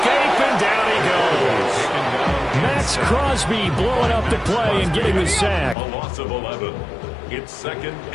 and down he goes. Max Crosby blowing up the play and getting the sack. A loss of 11. It's 2nd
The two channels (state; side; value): drops out; right; at 5.8 s